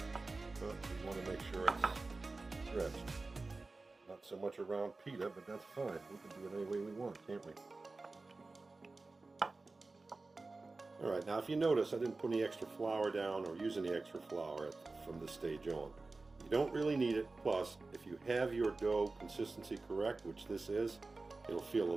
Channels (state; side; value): quieter; left; 3.5 dB